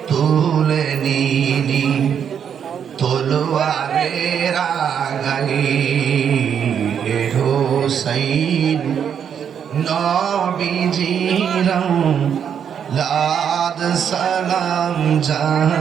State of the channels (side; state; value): left; quieter; 8.1 dB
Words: তুলে নিলি তলোয়ারের আগাই হুসাইন নবীজির লাদ সালাম